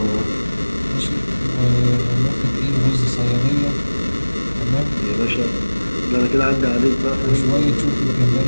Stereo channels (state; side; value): inverted; both; correlation -1.00